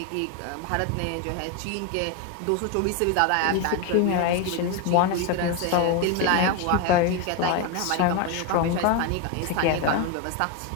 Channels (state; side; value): different; both; correlation 0.02